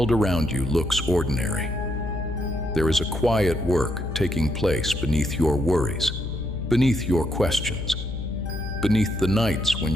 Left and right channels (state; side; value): noise; left; hum, 5 dB below the sound